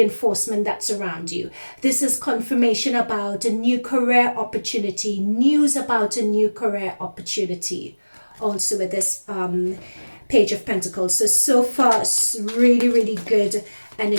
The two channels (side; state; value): both; inverted; correlation -1.00